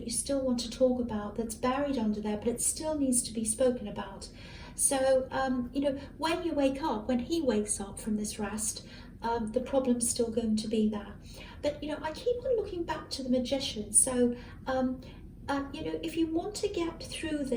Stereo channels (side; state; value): both; identical; correlation 1.00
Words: you still want to talk about, that's buried under there, but it still needs to be spoken about. So, you know, when you wake up, when he wakes up from this rest, the problem's still going to be there. But, you know, I keep on looking back to the Magician. So, you know, if you want to get through